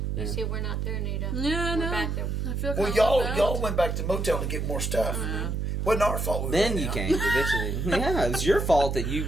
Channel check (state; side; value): noise; right; hum, 1 dB below the sound